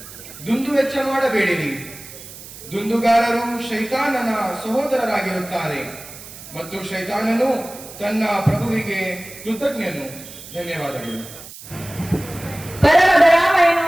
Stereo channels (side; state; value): right; noise; hiss, 15 dB below the sound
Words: ದುಂದು ವೆಚ್ಚ ಮಾಡಬೇಡಿರಿ. ದುಂದುಗಾರರು ಶೈತಾನನ ಸಹೋದರರಾಗಿರುತ್ತಾರೆ ಮತ್ತು ಶೈತಾನನು ತನ್ನ ಪ್ರಭುವಿಗೆ ಕೃತಜ್ಞನು. ಧನ್ಯವಾದಗಳು. ಪರಮ ದಯಾಮಯನು